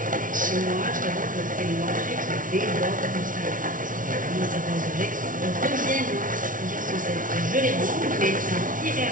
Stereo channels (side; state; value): left; late; 0.38 ms